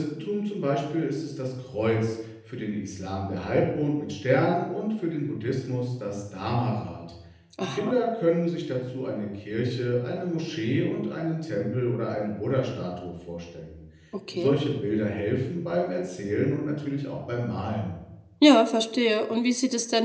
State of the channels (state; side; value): identical; both; correlation 1.00